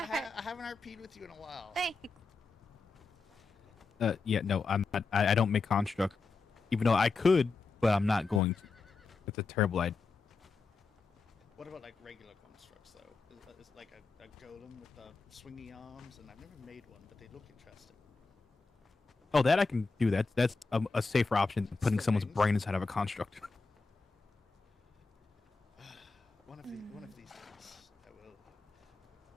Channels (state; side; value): quieter; right; 4.1 dB